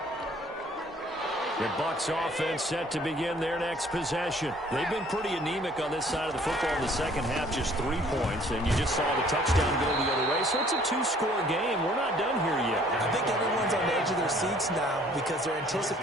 The Bucs offense set to begin their next possession. They've been pretty anemic on this side of the football in the second half, just 3 points, and you just saw the touchdown go the other way. So it's a 2-score game. We're not done here yet. I think everyone's on the edge of their seats now because they're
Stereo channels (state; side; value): normal; both; correlation 0.57